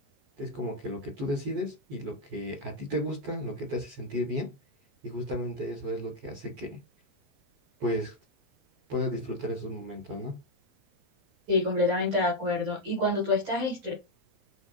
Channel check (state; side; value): late; left; 14 ms